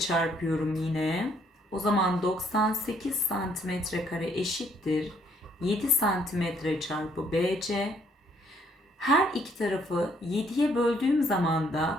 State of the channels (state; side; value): normal; both; correlation 0.66